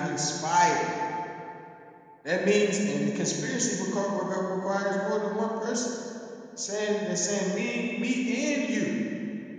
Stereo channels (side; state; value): both; identical; correlation 1.00